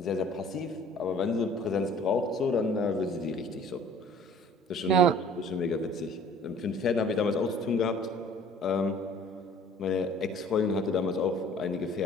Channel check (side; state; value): both; normal; correlation 0.50